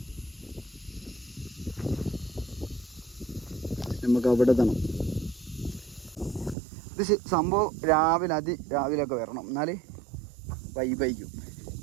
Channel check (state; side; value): drops out; left; at 6.6 s